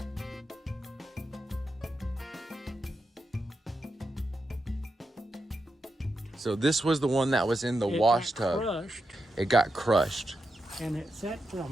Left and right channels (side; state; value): both; normal; correlation 0.87